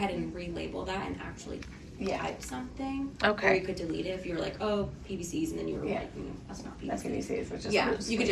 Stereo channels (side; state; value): both; identical; correlation 1.00